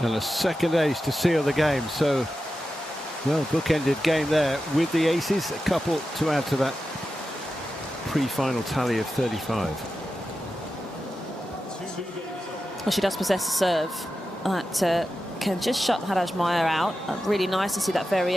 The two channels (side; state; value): both; normal; correlation 0.91